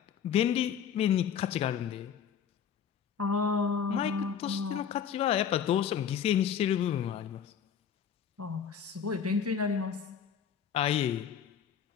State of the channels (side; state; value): right; quieter; 7.8 dB